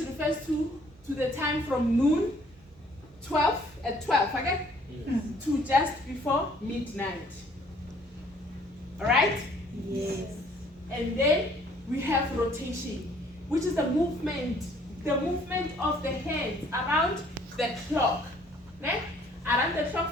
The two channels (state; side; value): normal; both; correlation 0.60